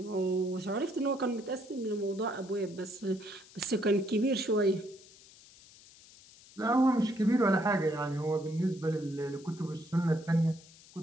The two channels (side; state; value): left; noise; hiss, 23 dB below the sound